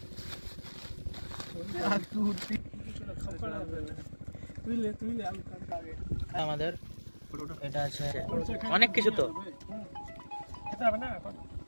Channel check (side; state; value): both; inverted; correlation -1.00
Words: আমাদের এটা আছে অনেক কিছু, তো